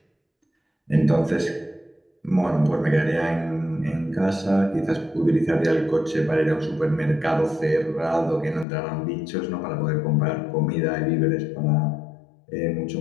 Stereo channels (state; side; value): drops out; right; at 8.7 s